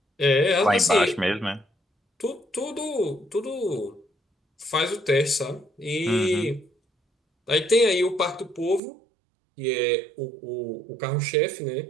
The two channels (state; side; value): drops out; left; at 8.8 s